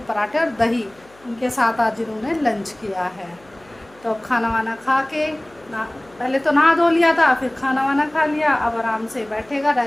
पराठे और दही उनके साथ आज इन्होंने लंच किया है। तो अब खाना वाना खा के पहले तो नहा धो लिया था, फिर खाना वाना खा लिया। अब आराम से बैठेगा,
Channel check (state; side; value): noise; left; hum, 28 dB below the sound